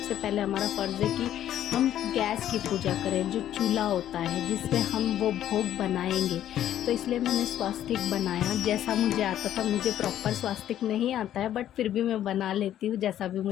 पहले हमारा फ़र्ज़ है कि हम गैस की पूजा करें, जो चूल्हा होता है जिस पे हम वो भोग बनाएंगे। तो इसलिए मैंने स्वास्तिक बनाया जैसा मुझे आता था। मुझे प्रॉपर स्वास्तिक नहीं आता है बट फिर भी मैं बना लेती हूँ जैसा भी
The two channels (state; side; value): quieter; right; 11.6 dB